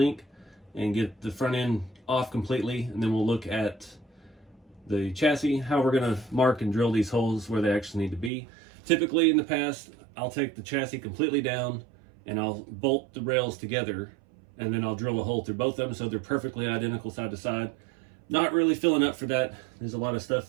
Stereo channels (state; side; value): drops out; left; at 8.3 s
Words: and get the front end off completely, and then we'll look at the chassis, how we're gonna mark and drill these holes where they actually need to be. Typically in the past, I'll take the chassis completely down and I'll bolt the rails together, and then I'll drill a hole through both of them so they're perfectly identical side to side. Not really filling up for that. There's a lot of